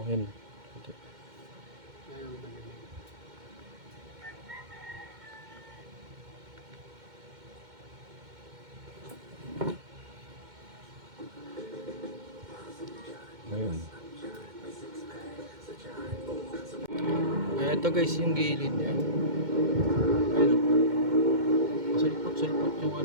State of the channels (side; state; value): left; late; 2.1 ms